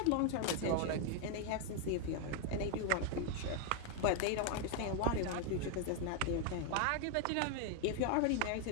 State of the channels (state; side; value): different; both; correlation 0.00